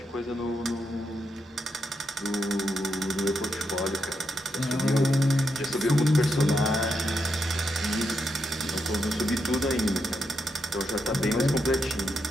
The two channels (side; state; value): both; normal; correlation 0.82